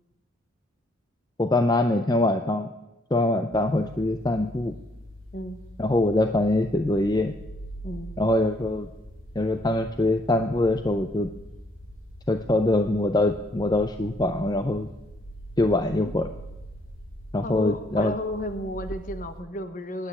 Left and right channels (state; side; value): normal; both; correlation 0.67